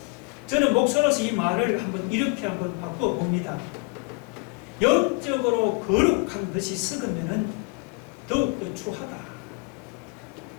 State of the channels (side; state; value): right; quieter; 30.3 dB